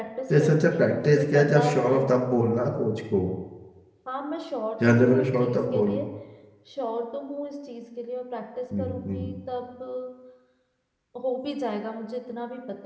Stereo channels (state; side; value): identical; both; correlation 1.00